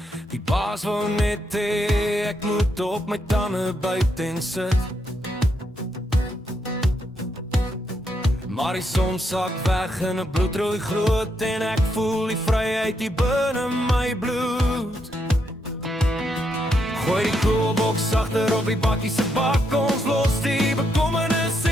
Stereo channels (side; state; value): both; normal; correlation 0.79